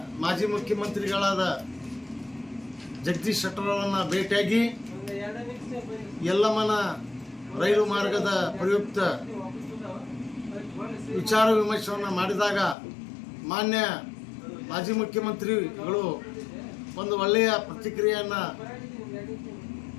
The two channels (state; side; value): drops out; right; at 12.8 s